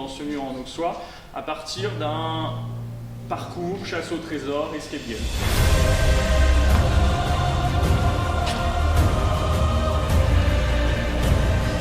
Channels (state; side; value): identical; both; correlation 1.00